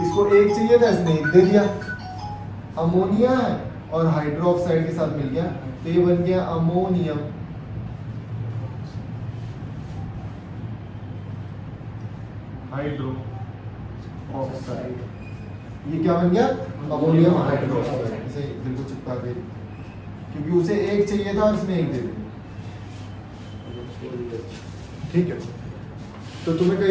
1 चाहिए था, इसने 1 दे दिया, अमोनिया है और हाइड्रोक्साइड के साथ मिल गया, तो ये बन गया अमोनियम। हाइड्रो ऑक्साइड, ये क्या बन गया, अमोनियम हाइड्रोक्साइड। इसे बिल्कुल चिपका दे, क्योंकि उसे 1 चाहिए था और इसने 1 दे दिया। ठीक है, तो तुम्हें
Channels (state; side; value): identical; both; correlation 1.00